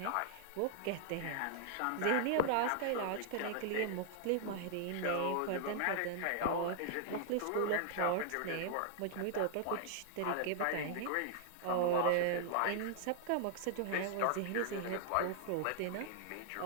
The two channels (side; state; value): both; different; correlation -0.01